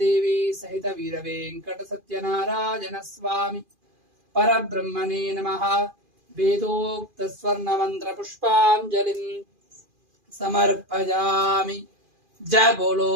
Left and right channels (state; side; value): late; left; 2.4 ms